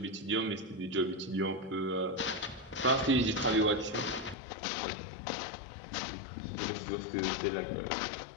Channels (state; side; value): drops out; right; at 4.4 s